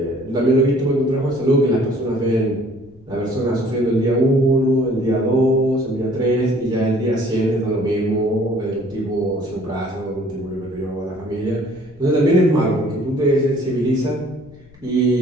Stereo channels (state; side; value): noise; left; rumble, 26 dB below the sound